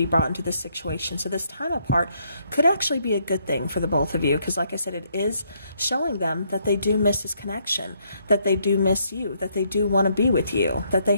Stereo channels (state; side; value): inverted; both; correlation -0.72